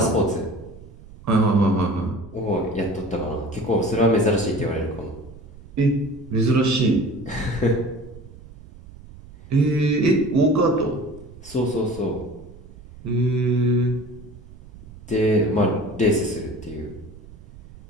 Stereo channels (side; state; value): right; noise; rumble, 19 dB below the sound